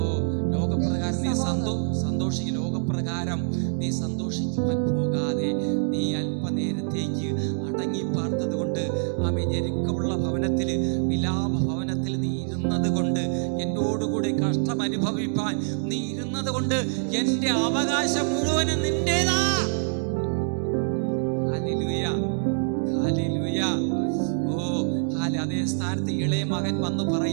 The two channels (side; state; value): left; silent; digital silence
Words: ലോകപ്രകാരം നീ സന്തോഷിക്കും. ലോകപ്രകാരം നീ സന്തോഷിക്കുവാൻ പോകാതെ നീ അല്പനേരത്തേക്ക് അടങ്ങി പാർത്തത് കൊണ്ട് ആമേൻ, ഞെരുക്കമുള്ള ഭവനത്തിൽ, വിലാപ ഭവനത്തിൽ നീ ഇരുന്നത് കൊണ്ട്, എന്നോടുകൂടി കഷ്ടം അനുഭവിപ്പാൻ നീ ഇരുന്നത് കൊണ്ട് എന്റെ അവകാശം മുഴുവനും നിന്റേതാ. Hallelujah, hallelujah. ഓ, അതേ സ്ഥാനത്ത് ഇളയ മകൻ വന്ന്